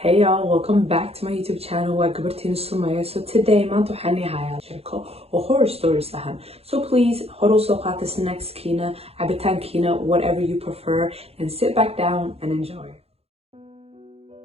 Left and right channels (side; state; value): left; late; 0.29 ms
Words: Hey y'all, welcome back to my YouTube channel. Waa gabartiin Sumaya. So today maanta waxaan hayaa sheeko oo horror stories ahan. So please hor u soo qaata snackskiina, cabitaankiina, whatever you prefer, and sit back down and enjoy.